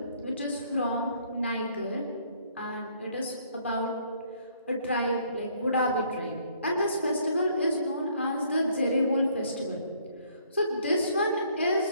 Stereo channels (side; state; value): both; inverted; correlation -0.64